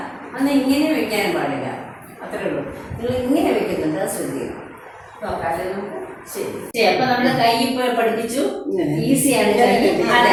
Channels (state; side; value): identical; both; correlation 1.00